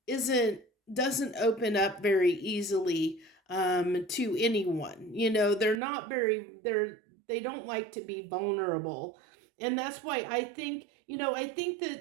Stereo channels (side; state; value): left; drops out; at 5.8 s